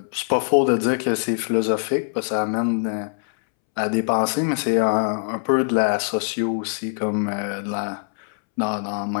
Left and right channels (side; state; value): right; silent; 64 dB below the other